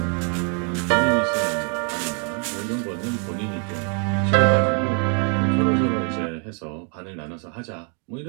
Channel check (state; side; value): quieter; left; 39.1 dB